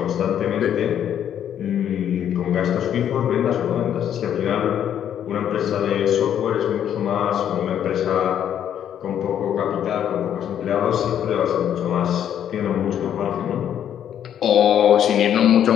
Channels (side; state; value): right; quieter; 9.7 dB